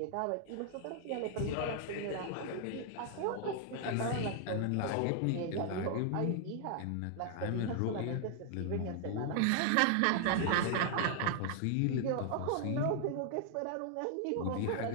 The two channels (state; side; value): different; both; correlation 0.00